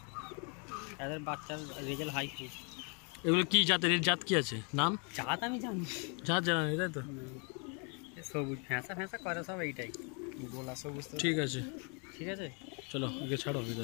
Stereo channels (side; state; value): right; quieter; 36.2 dB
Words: এদের বাচ্চার রেজাল্ট হাই খুব। এগুলো কি জাতের? এর জাত কি আছে? নাম জাত আমি জানি, জাত জানা নেই তাই তো? সবুজ ফ্যাঁসা ফ্যাঁসা করে সব, এইটাই গোলা সবুজ। ঠিক আছে, ঠিক আছে, চলো একে ছাড়ো